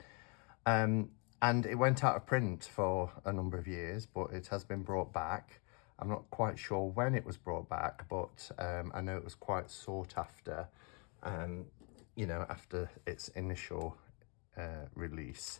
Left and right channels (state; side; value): quieter; right; 34.3 dB